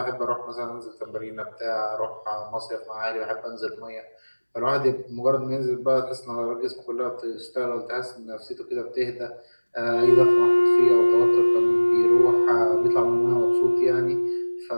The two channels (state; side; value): inverted; both; correlation -1.00